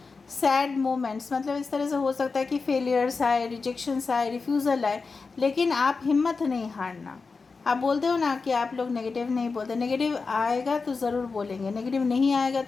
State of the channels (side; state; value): right; quieter; 4.5 dB